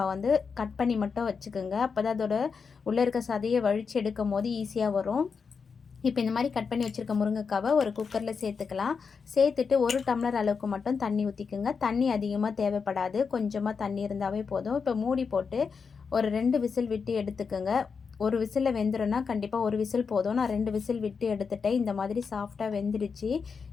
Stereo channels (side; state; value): right; quieter; 5.6 dB